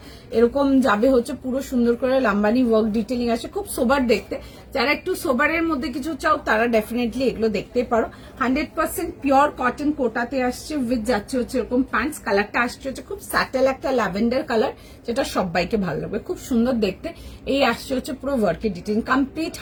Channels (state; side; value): identical; both; correlation 1.00